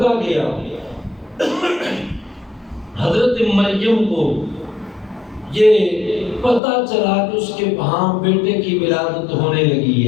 گیا، حضرت مریم کو یہ پتہ چلا کہ اس کے وہاں بیٹے کی ولادت ہونے لگی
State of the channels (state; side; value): drops out; right; at 6.6 s